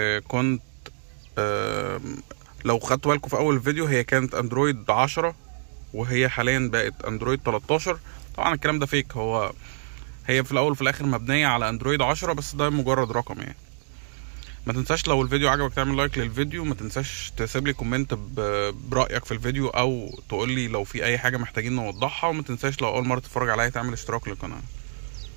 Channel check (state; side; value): silent; left; digital silence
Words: كنت لو خدتوا بالكم في اول فيديو هي كانت اندرويد 10 وهي حاليا بقت اندرويد 13. طبعا الكلام ده فيك، هي في الاول وفي الاخر مبنية على اندرويد 10 بس ده مجرد رقم يعني. ما تنساش لو الفيديو عجبك تعمل لايك للفيديو، ما تنساش تسيب لي كومنت برأيك في الفيديو او تقول لي لو في اي حاجة محتاجين نوضحها، وما تنساش لو اول مرة تتفرج عليا تعمل اشتراك للقناة.